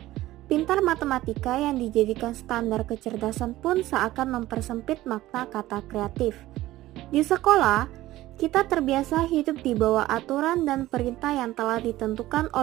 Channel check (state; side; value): quieter; left; 16.1 dB